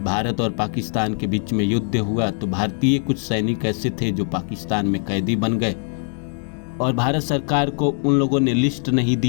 भारत और पाकिस्तान के बीच में युद्ध हुआ तो भारतीय कुछ सैनिक ऐसे थे जो पाकिस्तान में कैदी बन गए और भारत सरकार को उन लोगों ने लिस्ट नहीं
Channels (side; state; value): right; silent; 57 dB below the other